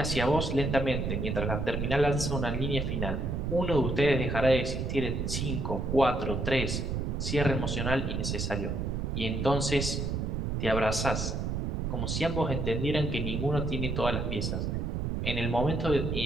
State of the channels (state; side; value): noise; right; rumble, 1 dB below the sound